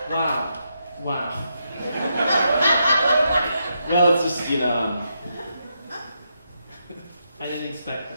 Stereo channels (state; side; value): inverted; both; correlation -0.82